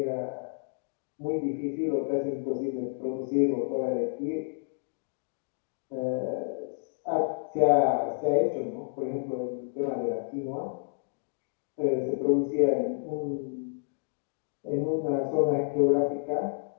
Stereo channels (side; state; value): right; silent; digital silence